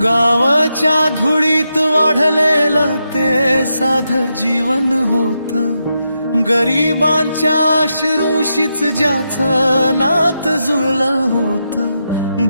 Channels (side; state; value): both; inverted; correlation -0.85